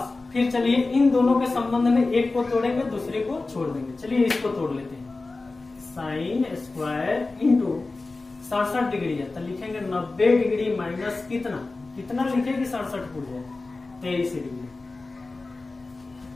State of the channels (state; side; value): quieter; right; 3.5 dB